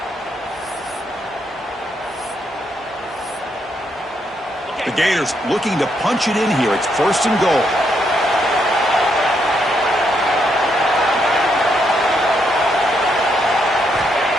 The Gators looking to punch it in here. It's 1st and goal.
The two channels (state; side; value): normal; both; correlation 0.77